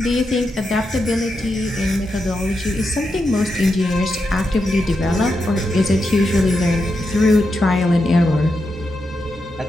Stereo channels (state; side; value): normal; both; correlation 0.86